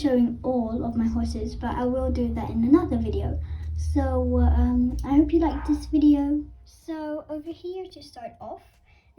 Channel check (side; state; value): both; identical; correlation 1.00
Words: all of my horses, but I will do that in another video. So I hope you like this video. So over here to start off,